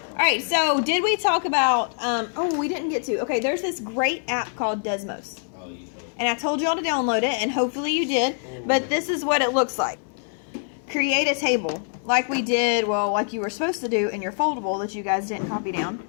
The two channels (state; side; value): silent; right; 62 dB below the other